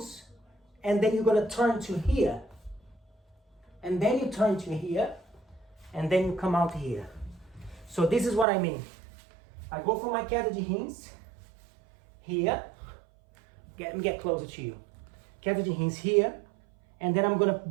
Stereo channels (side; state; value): left; drops out; at 8.5 s